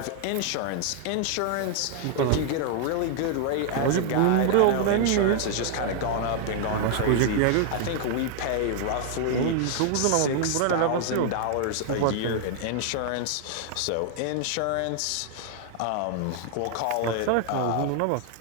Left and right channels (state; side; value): different; both; correlation 0.00